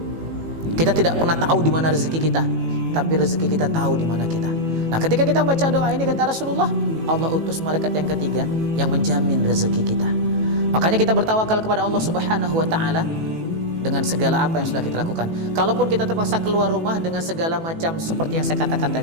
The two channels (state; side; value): late; left; 18 ms